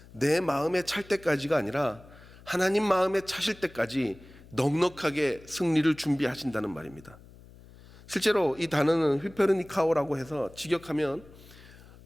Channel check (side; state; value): left; noise; hum, 22 dB below the sound